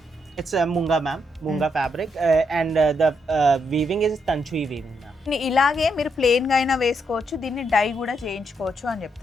It's a munga, ma'am. Munga fabric, and the weaving is Tanchui weaving, ma'am. ఇలాగే మీరు ప్లెయిన్గా అయినా వేసుకోవచ్చు, దీన్ని డై కూడా చేయించుకోవచ్చు అని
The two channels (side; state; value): both; normal; correlation 0.78